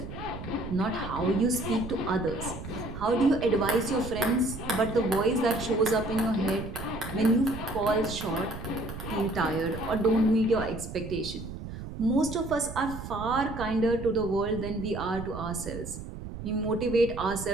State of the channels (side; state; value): right; noise; rumble, 10 dB below the sound